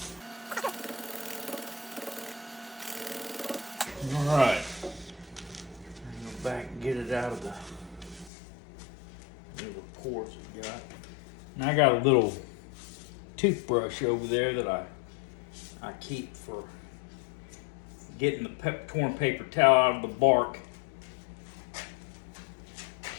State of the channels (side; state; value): right; drops out; at 8.3 s